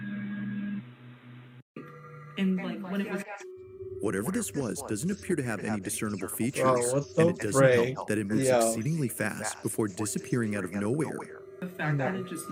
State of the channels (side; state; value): both; identical; correlation 1.00